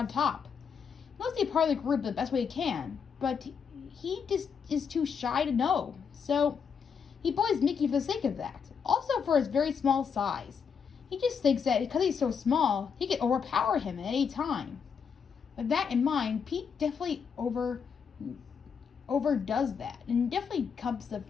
top. He wants to be part of the group the best way he can, but he just is too shy to know. So he bullies Mickey for the sake of that. Also for his very small size. He just thinks that because he's so small, he can overpower him at any time. With that in mind, Pete definitely overdoes that, and definitely becomes the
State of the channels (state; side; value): quieter; right; 6.5 dB